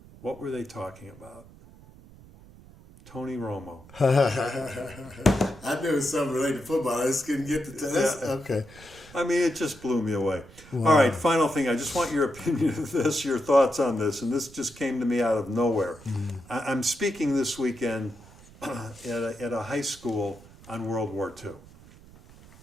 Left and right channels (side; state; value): right; noise; rumble, 22 dB below the sound